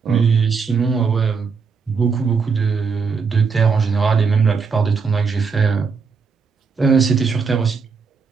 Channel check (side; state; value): left; quieter; 5.3 dB